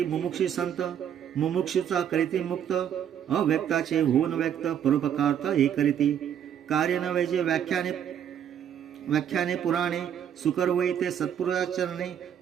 मुमुक्षी संत मुमुक्षूचा करीती मुक्त अव्यक्ताचे होऊन व्यक्त परोपकारता हे करीती. कार्य नव्हे जे व्याख्याने पुराणे सुकर वै ते सत्पुरुषाचरणे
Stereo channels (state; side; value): quieter; left; 9.2 dB